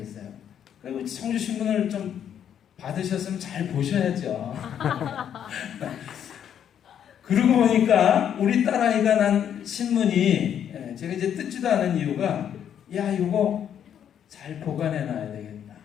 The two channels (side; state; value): right; quieter; 9.2 dB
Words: 그리고 청주 신문을 좀 받으셨으면 잘 보셔야죠. 그러고 보니까 우리 딸아이가 난 신문이 제가 이제 뜯지도 않은 이유가 야 이거 잘 보관해놔야 되겠다.